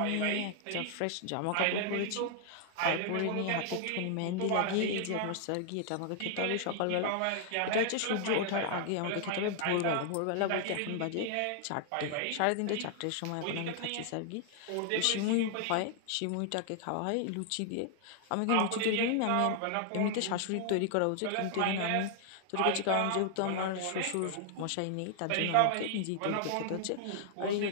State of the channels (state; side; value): different; both; correlation 0.00